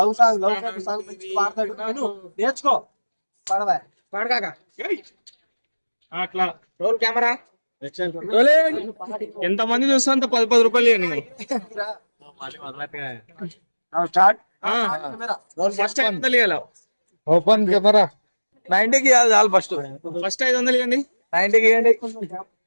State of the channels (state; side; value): inverted; both; correlation -1.00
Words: సాంగ్ మంచి పాడతాడు. నేర్చుకో, పాడవా పాడగాక. అట్లా రోల్ కెమెరా. ఎంత మంది చూస్తా అంత 10 రూపాయలు ఇవ్వండి. ఫస్ట్ 500 ఇవ్వాలి. Open camera. 90కి ఇవ్వాలి చాలు. ఫస్ట్ 500 ఇవ్వండి. 90కి ఇవ్వండి.